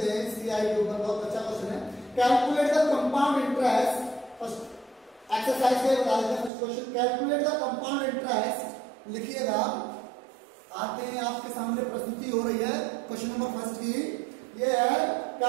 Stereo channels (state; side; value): drops out; left; at 6.5 s